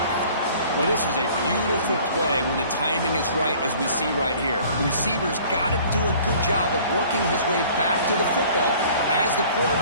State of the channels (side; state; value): both; inverted; correlation -0.51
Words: Well, this is a beautiful play when the timing is right, as we see right here. The receiver's got to do a good job of working his way back to the football as the